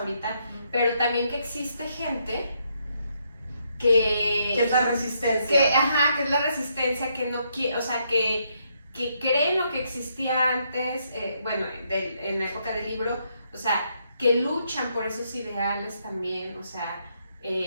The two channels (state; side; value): inverted; both; correlation -0.75